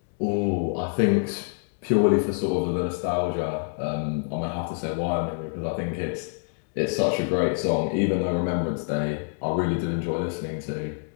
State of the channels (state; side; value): silent; right; 61 dB below the other